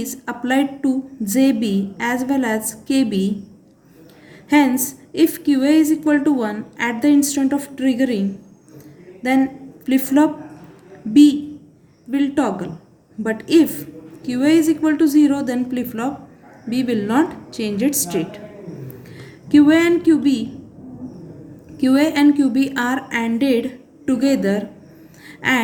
applied to JB as well as KB. Hence, if QA is equal to 1 at the instant of triggering, then flip-flop B will toggle. But if QA is equal to 0, then flip-flop B will not change its state. QA and QB are ANDed together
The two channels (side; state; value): both; identical; correlation 1.00